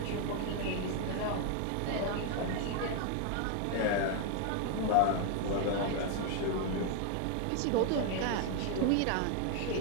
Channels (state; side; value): different; both; correlation 0.00